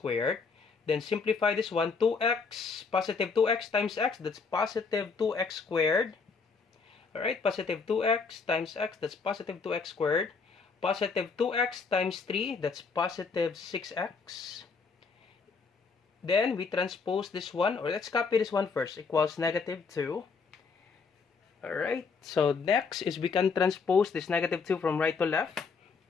Then simplify this one, 2x, positive 2x times x, that's positive 2x squared. Alright, positive 2x times x, that's positive 2x squared. Positive 2x times 3, that's positive 6x. Then we transpose this one, or let's copy this one first, equals negative 2. Alright, so next is we can transpose this negative 2 from right to left.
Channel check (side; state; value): right; quieter; 5.0 dB